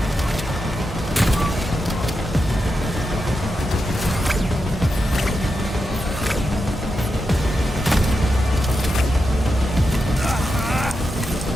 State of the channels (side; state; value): both; normal; correlation 0.87